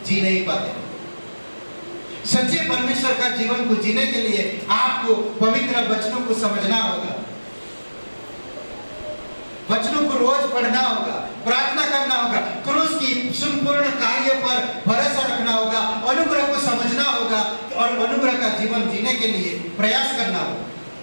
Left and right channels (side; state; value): both; inverted; correlation -1.00